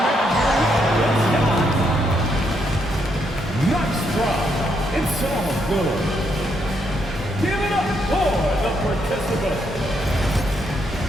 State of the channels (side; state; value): both; normal; correlation 0.76